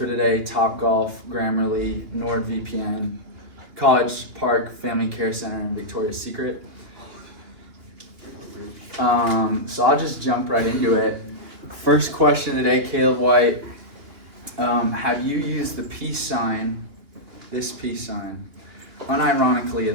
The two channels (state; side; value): late; left; 2.9 ms